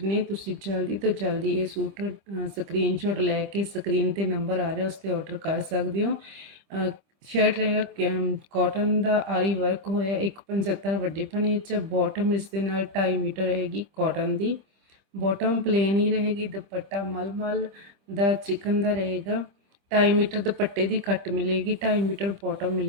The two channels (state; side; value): late; left; 25 ms